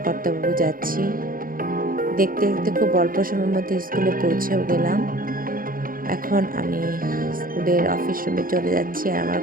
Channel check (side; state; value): left; late; 0.41 ms